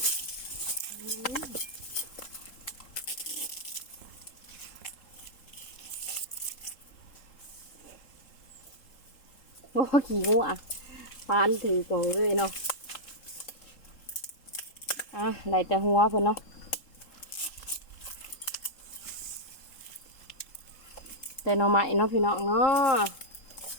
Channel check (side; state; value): right; late; 3.7 ms